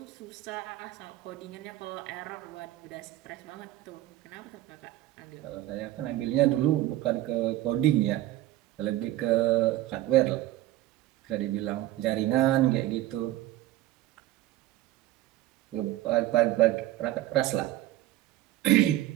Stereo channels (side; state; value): left; quieter; 15.1 dB